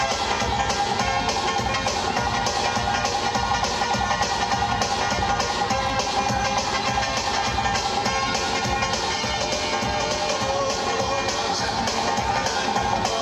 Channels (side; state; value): both; identical; correlation 1.00